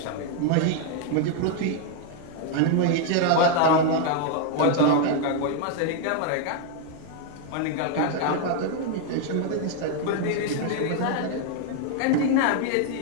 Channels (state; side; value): different; both; correlation 0.00